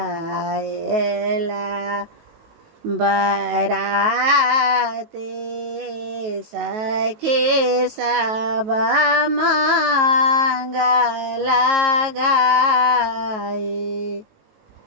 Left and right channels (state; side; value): late; left; 19 ms